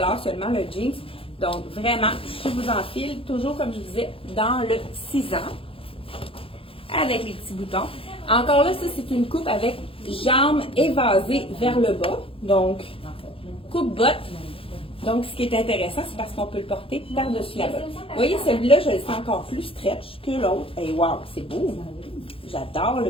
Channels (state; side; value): late; right; 0.27 ms